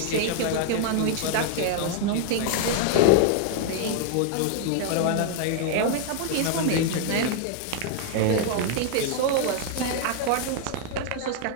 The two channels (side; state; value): both; different; correlation 0.00